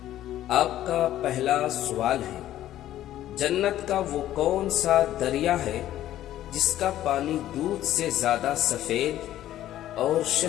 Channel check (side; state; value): right; quieter; 13.0 dB